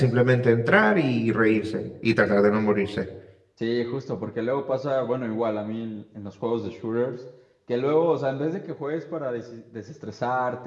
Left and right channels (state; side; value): identical; both; correlation 1.00